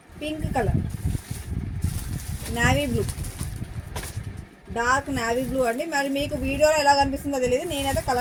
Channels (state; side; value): identical; both; correlation 1.00